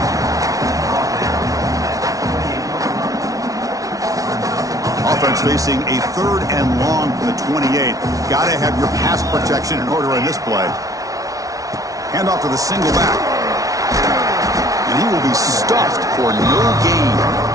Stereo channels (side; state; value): left; late; 0.17 ms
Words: Offense facing a third and long from the 28. Got to have your pass protection in order in this play. Hand off to the single back. And he will be stuffed for no gain.